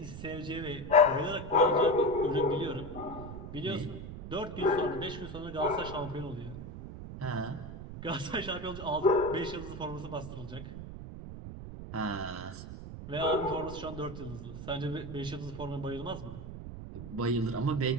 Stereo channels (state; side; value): noise; right; rumble, 10 dB below the sound